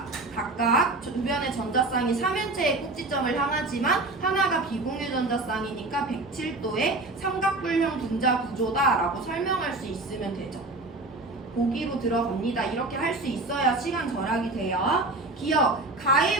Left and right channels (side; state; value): left; quieter; 3.0 dB